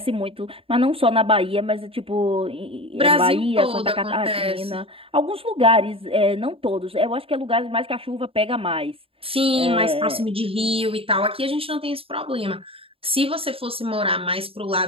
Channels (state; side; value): late; left; 0.27 ms